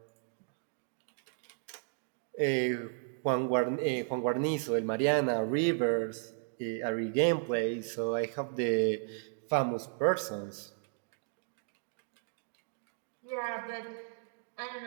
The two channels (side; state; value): left; silent; digital silence